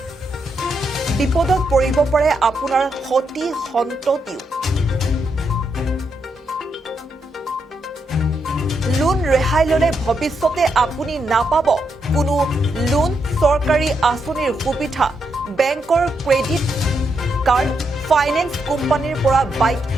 বিপদত পৰিব পাৰে আপোনাৰ সতি সন্ততিও লোন ৰেহাই ললে ভৱিষ্যতে আপুনি নাপাব কোনো লোন চৰকাৰী আঁচনিৰ সুবিধা বেংকৰ ক্ৰেডিট কাৰ্ড ফাইনেন্স কোম্পানীৰ পৰা বাইক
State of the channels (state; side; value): normal; both; correlation 0.81